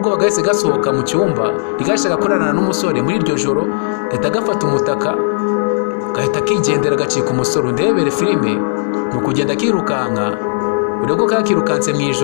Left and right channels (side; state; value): right; silent; digital silence